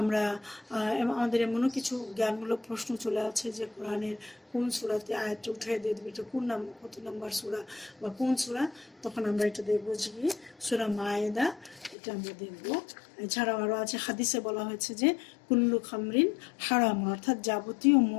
আমাদের এমনও কিছু জ্ঞানমূলক প্রশ্ন চলে আছে যে কোরআনের কোন সূরাতে আয়াতটা উঠিয়ে দিয়ে দেবে, এটা কোন কত নম্বর সূরা বা কোন সূরা, তখন আমরা এটা দেখবো যে সূরা মায়েদা, এটা আমরা দেখবো। এছাড়াও আরও আছে, হাদিসে বলা হয়েছে যে কুল্লু খামরিন হারাম, অর্থাৎ যাবতীয়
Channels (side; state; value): right; drops out; at 12.0 s